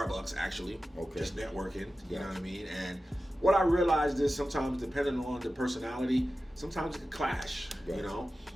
actually, just networking, you know what I mean. And what I realized is sometimes, depending on the personality, sometimes it can clash, you know.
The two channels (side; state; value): both; normal; correlation 0.94